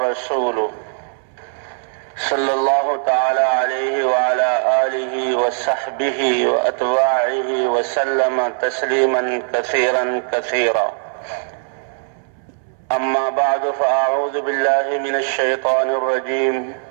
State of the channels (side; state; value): left; silent; 63 dB below the other